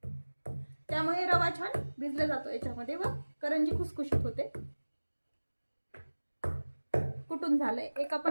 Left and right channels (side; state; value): both; inverted; correlation -1.00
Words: त्यामुळे रवा छान भिजला जातो याच्यामध्ये व करंजी खुसखुशीत होते. कुटून झालंय. एक